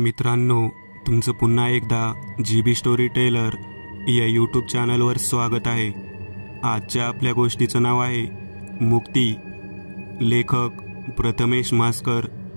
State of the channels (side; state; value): both; inverted; correlation -1.00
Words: तुमचं पुन्हा एकदा GB स्टोरी टेलर या यूट्यूब चॅनलवर स्वागत आहे। आजच्या आपल्या गोष्टीचं नाव आहे मुक्ती। लेखक प्रथमेश मास्कर।